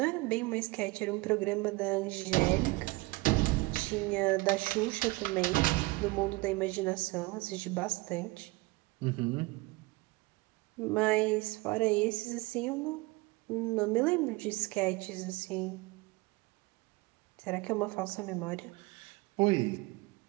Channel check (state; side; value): quieter; left; 23.0 dB